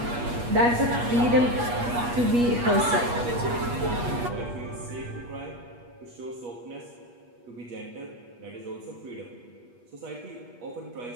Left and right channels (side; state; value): left; late; 8.3 ms